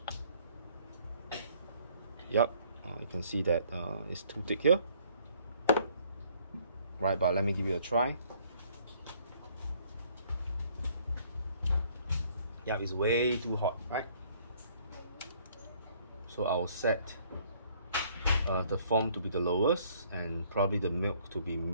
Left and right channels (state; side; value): inverted; both; correlation -0.62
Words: Yep, you can see that it's too thick here. Right, but let me give it a try. Yeah, it's way too hot, right? So I'll set the foam to be the lowest and probably the milk to